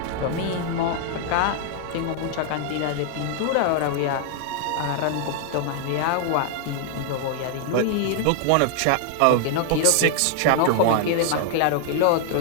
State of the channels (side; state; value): both; different; correlation 0.00